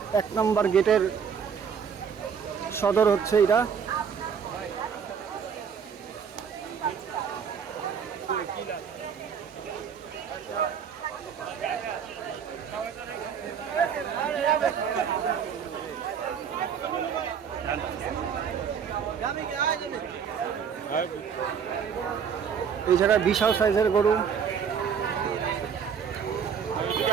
1 নম্বর গেটের সদর হচ্ছে এটা। এই জায়গায় বিশাল সাইজের গরু।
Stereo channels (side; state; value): left; quieter; 7.1 dB